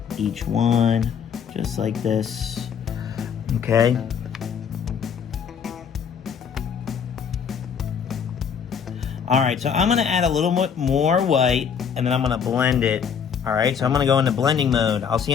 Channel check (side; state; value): right; quieter; 7.2 dB